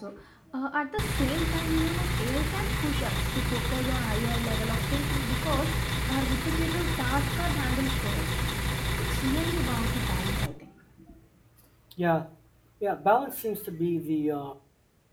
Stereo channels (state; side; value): identical; both; correlation 1.00